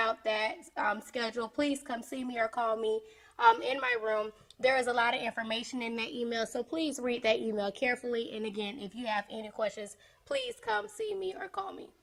that schedule, please come see me or call me in my room. There is a lot of information in that email, so please read that email carefully. And again, if you have any questions, please come see me or call me.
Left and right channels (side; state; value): both; identical; correlation 1.00